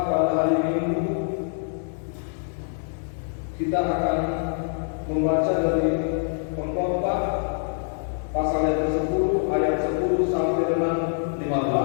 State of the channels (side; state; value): right; silent; 62 dB below the other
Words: pada hari Minggu kita akan membaca dari Pengkhotbah pasal yang ke-10 ayat 10 sampai dengan